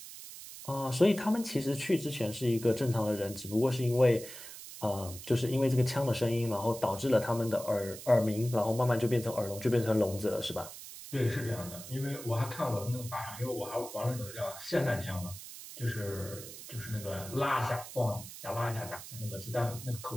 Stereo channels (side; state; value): right; noise; hiss, 13 dB below the sound